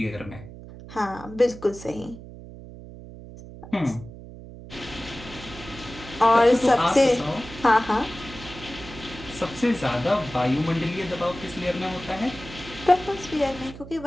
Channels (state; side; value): noise; right; hum, 15 dB below the sound